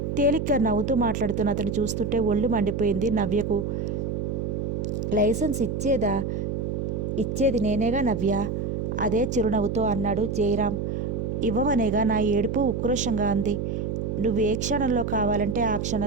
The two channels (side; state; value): right; noise; hum, 2 dB below the sound